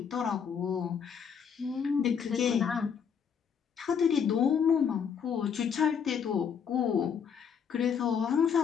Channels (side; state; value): right; quieter; 7.2 dB